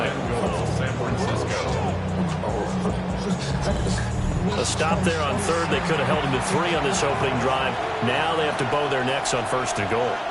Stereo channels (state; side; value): identical; both; correlation 1.00